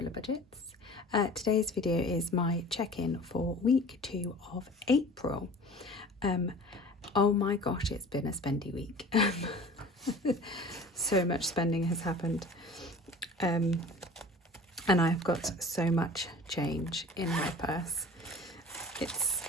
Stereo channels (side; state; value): both; normal; correlation 0.43